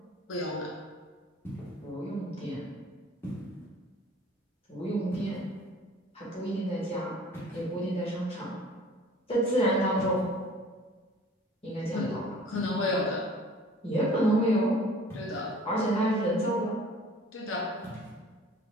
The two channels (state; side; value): normal; both; correlation 0.49